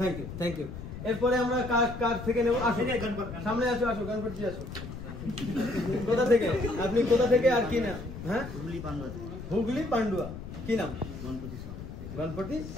থ্যাংক ইউ। এরপরে আমরা কার থেকে নেব? আসো, সামনে আসো, গণপতি আসো। কোথা থেকে আপনি? কোথা থেকে আর কি নাম? হ্যাঁ, হুগলি পান্ডুয়া। কি নাম? গণপতি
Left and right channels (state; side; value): noise; left; rumble, 10 dB below the sound